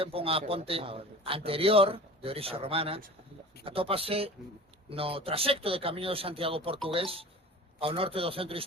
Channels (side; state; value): both; normal; correlation 0.39